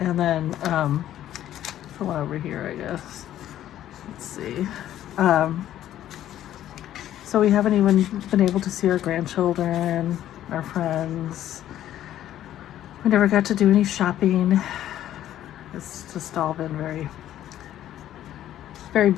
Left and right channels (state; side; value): quieter; right; 12.2 dB